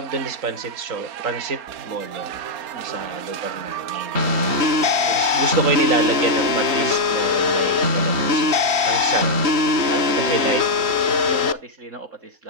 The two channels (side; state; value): left; late; 3.8 ms